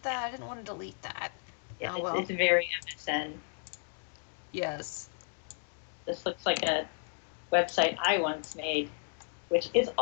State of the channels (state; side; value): silent; right; digital silence